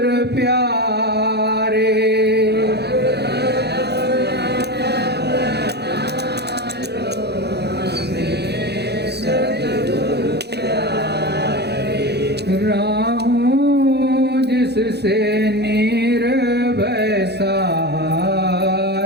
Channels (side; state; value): left; late; 0.48 ms